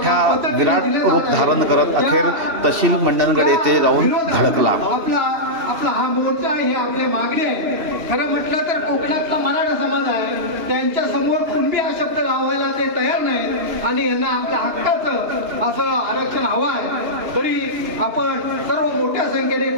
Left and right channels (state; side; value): late; left; 2.9 ms